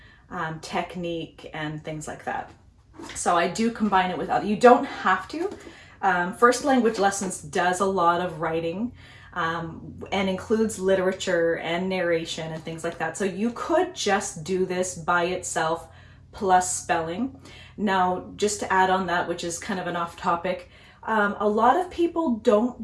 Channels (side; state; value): both; identical; correlation 1.00